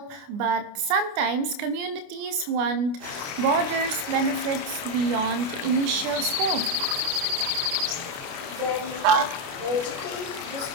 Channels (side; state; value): left; late; 29 ms